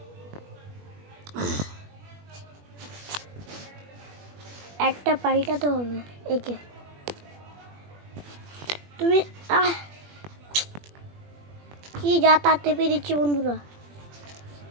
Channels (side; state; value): left; late; 21 ms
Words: একটা পাল্টাতে হবে একে। তুমি কি যা তা টেপে দিচ্ছি বন্ধুরা।